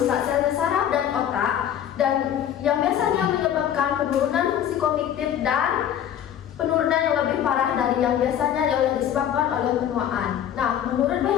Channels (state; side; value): quieter; right; 10.0 dB